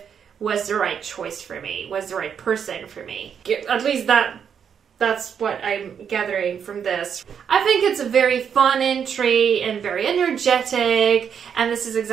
was the right choice for me, was the right person for me. At least that's what I'm gathering from this. I think it's a very fun entry and very energetic, and this is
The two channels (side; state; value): left; quieter; 7.6 dB